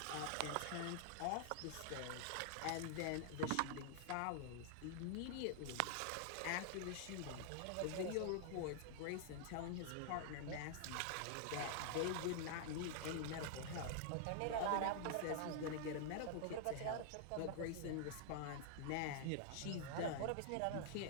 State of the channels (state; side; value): different; both; correlation -0.01